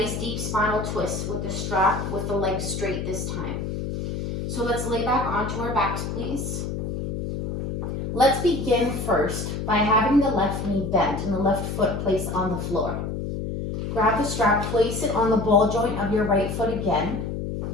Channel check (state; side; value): noise; left; hum, 4 dB below the sound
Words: deep spinal twist with the strap, with the legs straight this time. So let's lay back onto our backs, please. Let's begin first by having the left knee bent and the left foot placed on the floor. Grab the strap, place it on the ball joint of your right foot again.